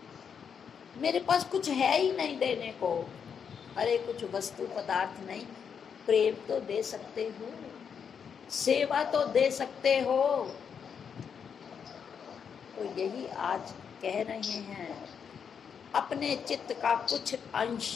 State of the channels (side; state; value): right; quieter; 7.0 dB